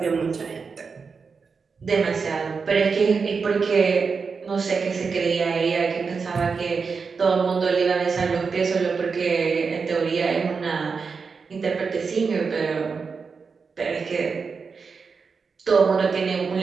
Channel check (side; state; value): left; quieter; 5.2 dB